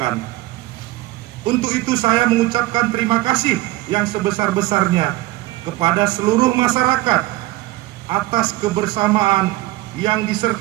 Untuk itu saya mengucapkan terima kasih yang sebesar-besarnya kepada seluruh masyarakat atas kebersamaan yang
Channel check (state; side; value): quieter; left; 18.0 dB